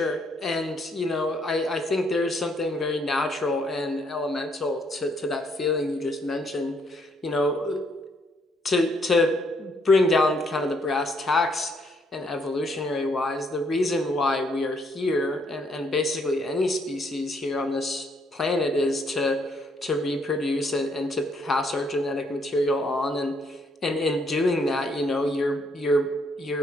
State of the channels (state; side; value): normal; both; correlation 0.70